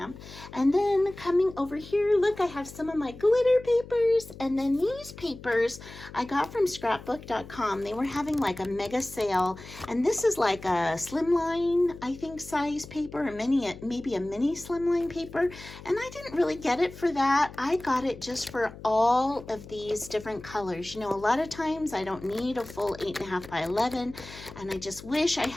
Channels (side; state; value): left; noise; hum, 16 dB below the sound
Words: And then coming over here, look, I have some of my glitter papers, and then these papers I got from scrapbook.com. They were having like a mega sale, and this is like a slimline, I think, size paper, or maybe a mini slimline paper, and I didn't really get it for that. I got it just for all of these different colors. You know, a lot of times I don't need a full 8.5 by 11, and I just wish I